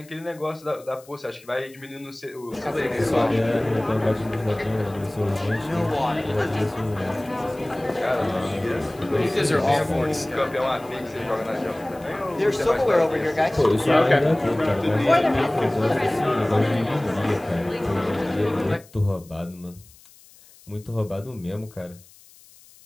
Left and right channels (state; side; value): noise; left; hiss, 25 dB below the sound